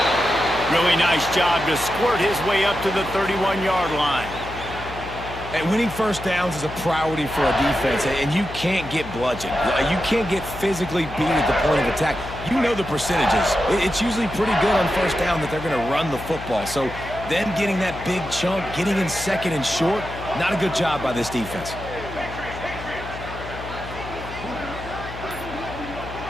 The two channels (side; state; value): left; noise; hum, 12 dB below the sound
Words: Really nice job to squirt his way up to the 31-yard line. And winning first downs is a priority for a defense, and you can't get bludgeoned. You can't get physically beat at the point of attack. You know the percentages. It's usually pretty good on first down that they're going to run the football. So them getting that big chunk, getting in second and short, not a good job by this defense.